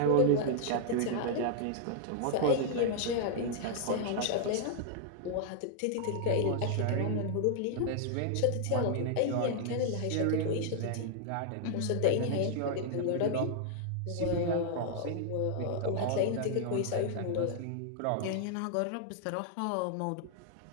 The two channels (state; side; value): different; both; correlation 0.00